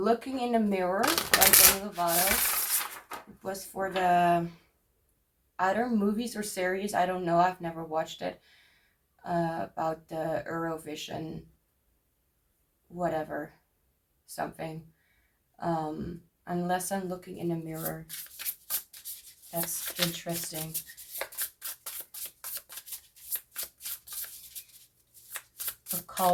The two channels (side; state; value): both; identical; correlation 1.00